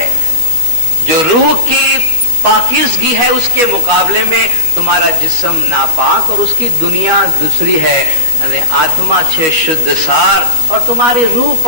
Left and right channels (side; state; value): left; late; 13 ms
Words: جو روح کی پاکیزگی ہے اس کے مقابلے میں تمہارا جسم ناپاک اور اس کی دنیا دوسری ہے. یعنی آتما چھے شدھ سار اور تمہاری روح